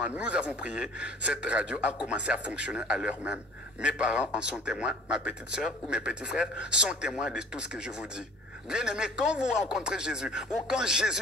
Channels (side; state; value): both; normal; correlation 0.49